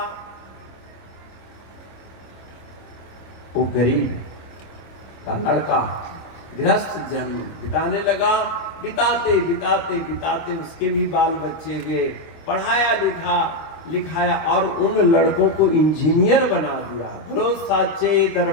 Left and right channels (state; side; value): late; right; 25 ms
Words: वो गरीब का लड़का गृहस्थ जन्म बिताने लगा। बिताते बिताते बिताते उसके भी बाल बच्चे हुए, पढ़ाया लिखाया, और उन लड़कों को इंजीनियर बना दिया। बोलो साचे